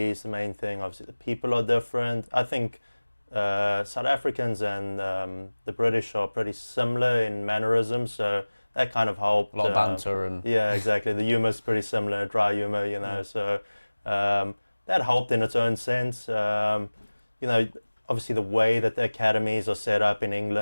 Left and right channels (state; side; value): inverted; both; correlation -1.00